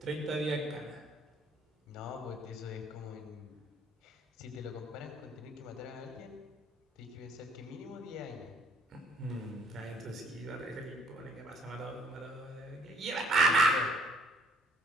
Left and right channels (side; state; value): both; normal; correlation 0.58